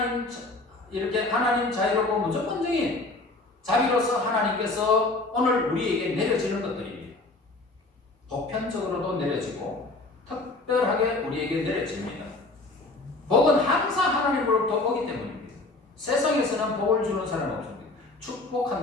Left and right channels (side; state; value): right; quieter; 3.1 dB